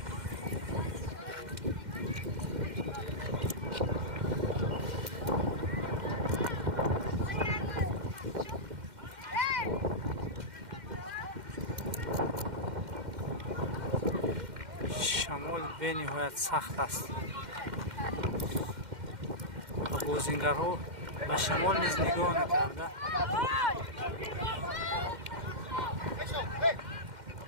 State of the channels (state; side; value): late; left; 2.1 ms